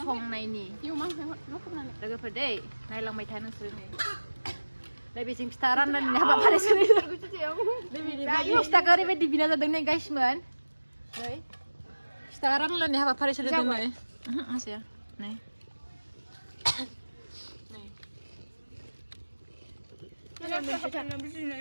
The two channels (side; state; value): both; inverted; correlation -1.00